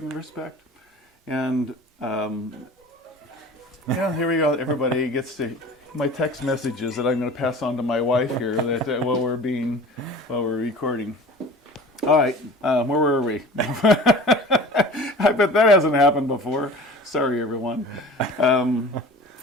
respect. And here we go. Everybody gets to my text messages that I'm going to pass on to my wife here that while we're recording. All right, where were we? I bet that hasn't happened before. Sorry, everyone.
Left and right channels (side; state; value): both; normal; correlation 0.41